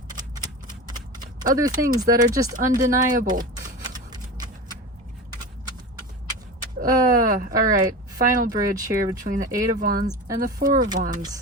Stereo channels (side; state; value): both; normal; correlation 0.28